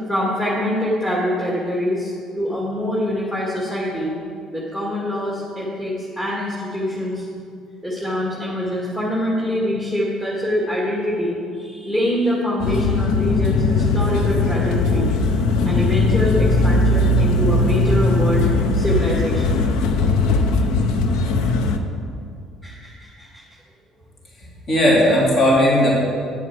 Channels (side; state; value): both; normal; correlation 0.54